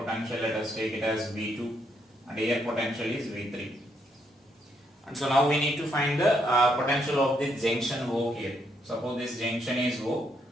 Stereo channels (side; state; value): both; normal; correlation 0.75